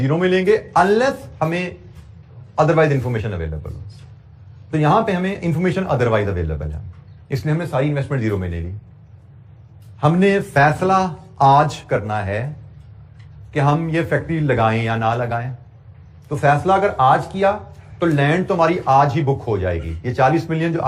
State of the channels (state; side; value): identical; both; correlation 1.00